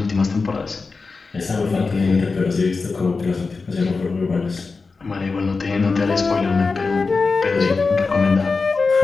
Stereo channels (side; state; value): right; quieter; 4.3 dB